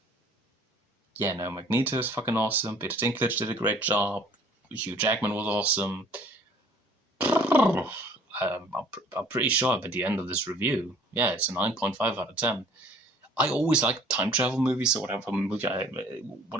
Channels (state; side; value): normal; both; correlation 0.53